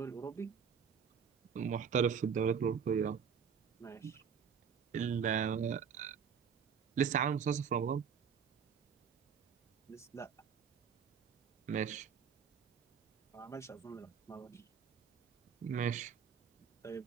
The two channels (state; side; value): quieter; left; 7.0 dB